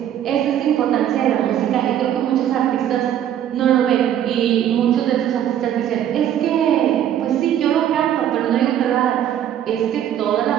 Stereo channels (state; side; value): quieter; left; 10.6 dB